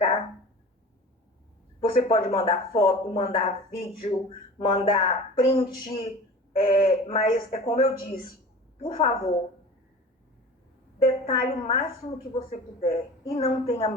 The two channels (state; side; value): normal; both; correlation 0.38